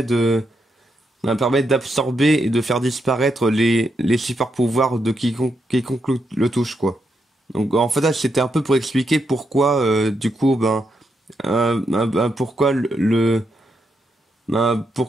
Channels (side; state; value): both; normal; correlation 0.82